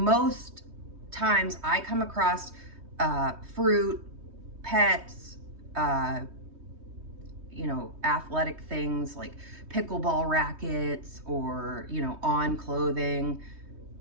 times I come across fruit, pets, you know, athletic things like pickleball rackets, or, you know, on clothing,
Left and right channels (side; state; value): left; late; 3.2 ms